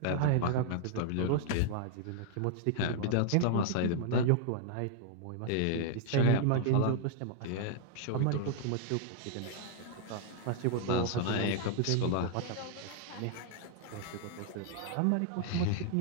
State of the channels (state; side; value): different; both; correlation -0.01